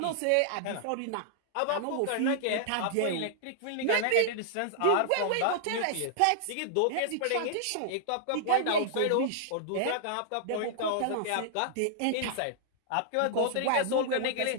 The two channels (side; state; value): both; different; correlation -0.01